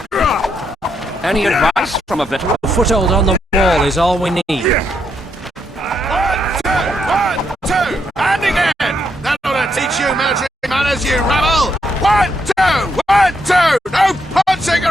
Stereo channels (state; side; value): normal; both; correlation 0.78